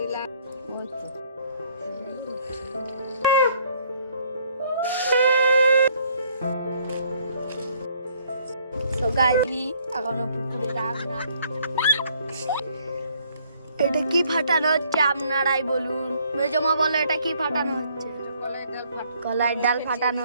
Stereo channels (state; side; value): inverted; both; correlation -0.64